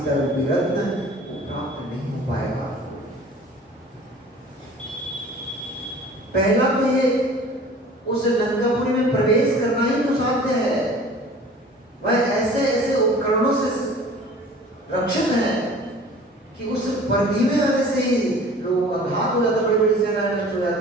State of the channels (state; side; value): normal; both; correlation 0.45